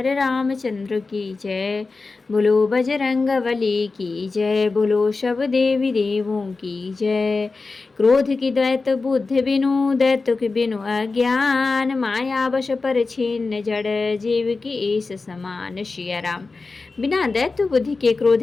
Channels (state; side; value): quieter; right; 3.9 dB